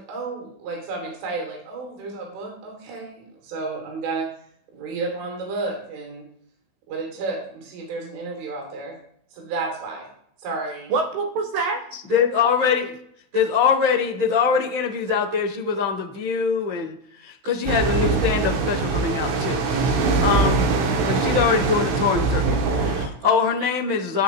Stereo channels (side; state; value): left; late; 16 ms